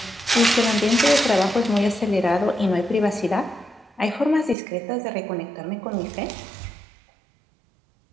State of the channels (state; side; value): drops out; left; at 4.5 s